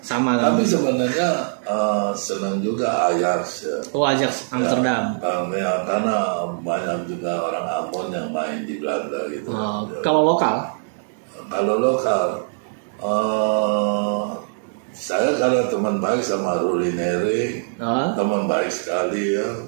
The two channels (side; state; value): left; silent; digital silence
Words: sama kan? Tapi sebenarnya senang juga Ajax ya. Ajax Amsterdam. Karena banyak juga orang Ambon yang main di Belanda gitu. Kalau lokal? Kalau lokal, saya karena teman baik sama Rulineri, teman baik sekali ya,